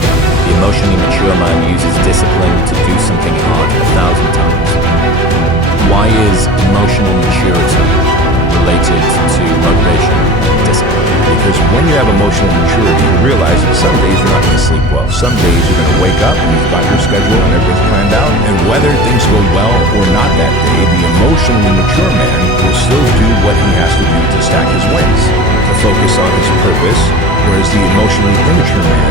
The emotionally mature man uses discipline to do something hard 1,000 times. Why is emotional maturity related to motivation and discipline? Because when you have emotional maturity, you realize that some days you're not going to sleep well. Some days you're going to wake up and you've got your schedule and everything's planned out. And whether things go well or not that day, the emotionally mature man will still do what he has to do to stack his wins, to focus on his purpose. Whereas the emotionally immature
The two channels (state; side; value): normal; both; correlation 0.37